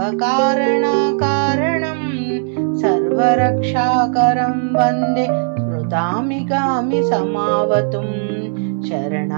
కారణం సర్వరక్షాకరం వందే స్మృతామిగామి సమావతుం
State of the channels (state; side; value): silent; left; digital silence